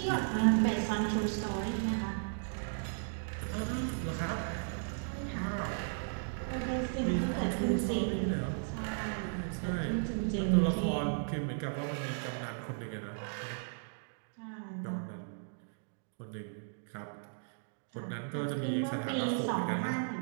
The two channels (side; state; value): left; silent; digital silence